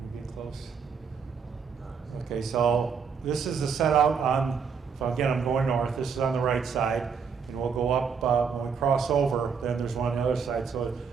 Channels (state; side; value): quieter; left; 6.2 dB